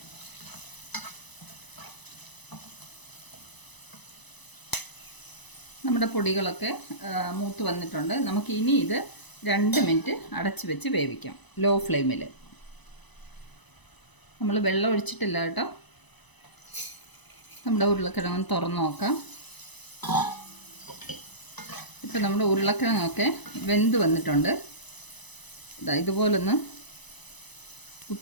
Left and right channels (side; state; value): right; late; 1.0 ms